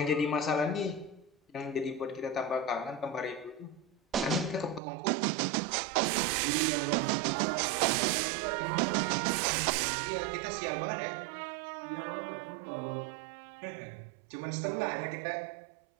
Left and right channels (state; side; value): drops out; left; at 4.8 s